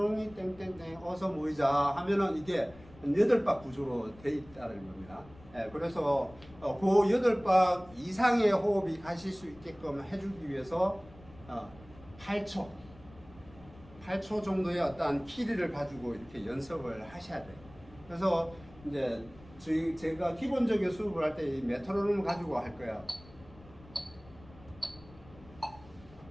땡땡땡 어서 모이자 하면은 이게 8박 구조로 돼 있다는 겁니다. 그래서 그 8박 이상의 호흡이 가실 수 있게끔 해주기 위해서 8초 정도의 어떤 키리를 가지고 이렇게 연습을 하셔야 돼요. 그래서 이제 제가 기본적인 수업을 할 때 이 메트로놈을 가지고 할 거예요.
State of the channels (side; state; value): left; noise; rumble, 22 dB below the sound